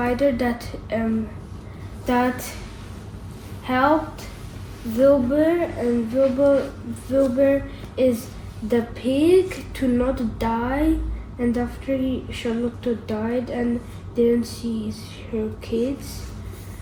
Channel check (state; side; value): identical; both; correlation 1.00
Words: that helped Wilbur, and Wilbur is the pig to not die. And after Charlotte died and didn't see her kids.